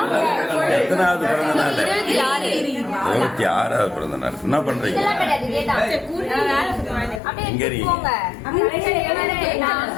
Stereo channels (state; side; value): drops out; right; at 7.2 s